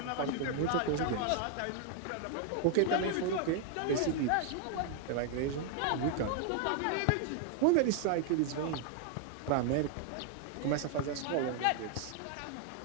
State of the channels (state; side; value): different; both; correlation 0.00